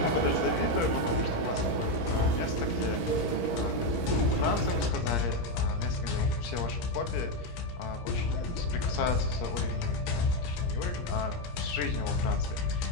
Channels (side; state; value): right; late; 17 ms